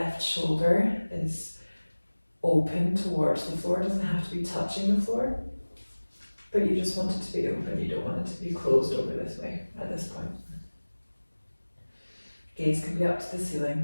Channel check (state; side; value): inverted; both; correlation -1.00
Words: shoulder is open towards the floor. It doesn't have to be touching the floor, but you just want it to be open. You don't want it to be closed over this way at this point. Gaze can be up to the